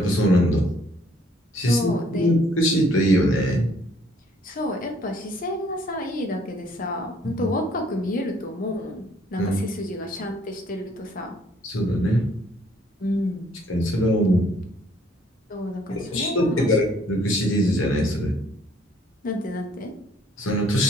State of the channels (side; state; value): both; normal; correlation 0.63